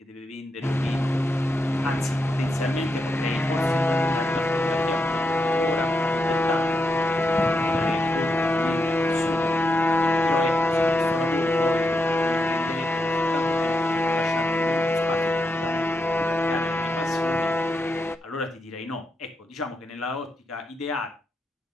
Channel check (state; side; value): normal; both; correlation 0.84